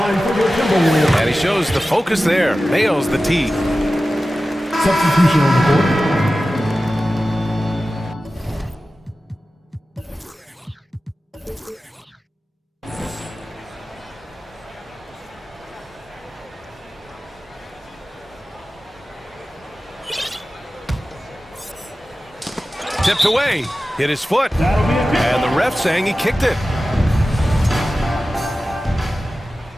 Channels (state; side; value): normal; both; correlation 0.95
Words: for the Timberwolves. And he shows the focus there. Nails the tee. Substitution on the court. Tipped away. Hit his foot. And the ref saying he kicked it.